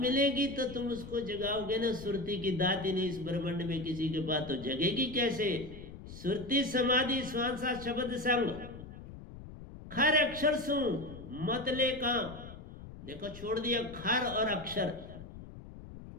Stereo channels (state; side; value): noise; left; rumble, 14 dB below the sound